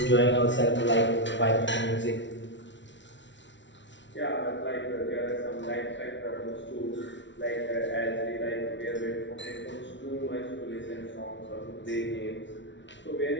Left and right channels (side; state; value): right; late; 0.53 ms